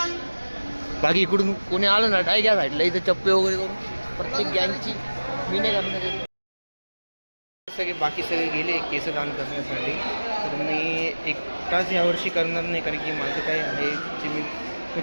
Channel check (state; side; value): inverted; both; correlation -1.00